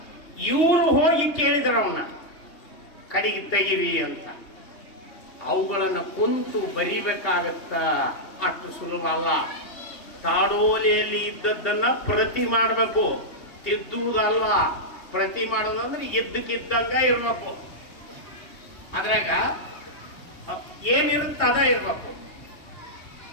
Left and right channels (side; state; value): right; late; 3.2 ms